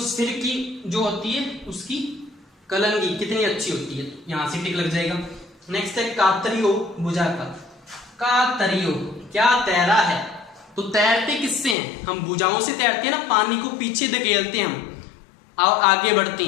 की जो होती है उसकी कलंगी कितनी अच्छी होती है, यहां से टिक लग जाएगा। नेक्स्ट है कातरियो भुजा का। कातरियो क्या तैरा है, तो तैरते किससे हैं, हम भुजाओं से तैरते हैं ना, पानी को पीछे धकेलते हैं हम और आगे बढ़ते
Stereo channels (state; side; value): drops out; right; at 11.8 s